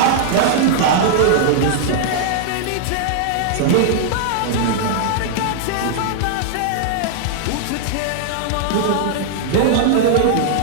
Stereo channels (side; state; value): both; different; correlation -0.01